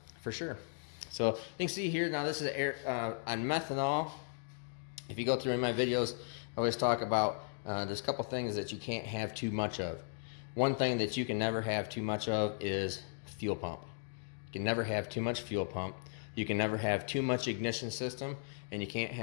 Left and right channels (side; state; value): right; silent; digital silence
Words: for sure. So you can see here now this is air on methanol. If you go through in my videos, I always talk about there's a couple things that you can't have too much of. One thing that you can never have too much of is fuel pump. You can never have too much fuel pump. You can never have too much ignition system, and you can't